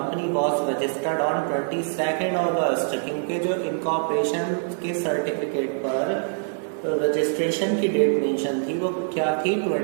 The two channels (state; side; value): silent; left; digital silence